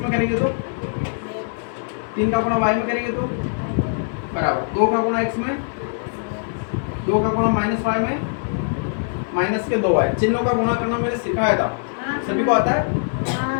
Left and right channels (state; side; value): silent; right; 63 dB below the other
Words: करेंगे तो, 3 का गुणा y में करेंगे तो बराबर 2 का गुणा x में, 2 का गुणा माइनस y में, माइनस के 2y। चिन्हों का गुणा करना मैंने सिखाया था, सभी को आता है,